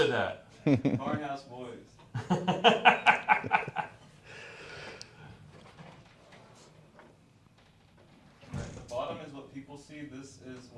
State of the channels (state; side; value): identical; both; correlation 1.00